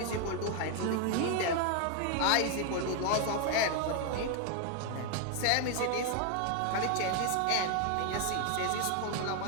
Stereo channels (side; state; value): both; different; correlation 0.01